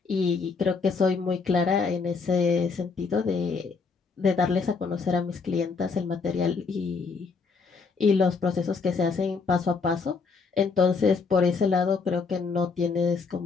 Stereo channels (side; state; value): right; quieter; 4.8 dB